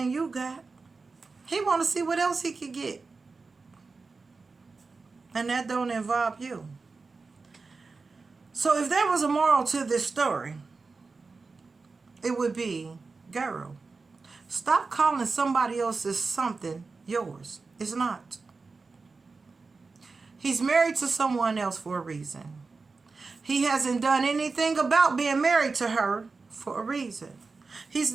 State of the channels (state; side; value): quieter; left; 4.2 dB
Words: you got. He want to see what else he could get. And that don't involve you. So if there was a moral to this story, it would be, girl, stop calling somebody else's something yours. It's not. He's married to someone else for a reason. He hasn't done anything about being married to her for a reason. He's